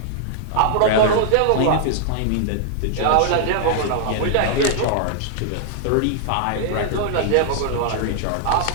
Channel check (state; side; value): different; both; correlation -0.01